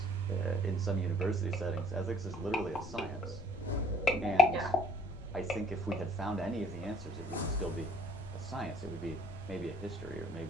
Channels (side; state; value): left; noise; rumble, 14 dB below the sound